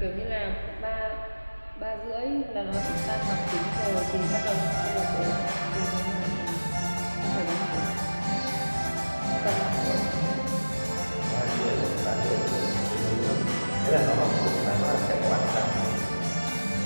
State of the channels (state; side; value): inverted; both; correlation -1.00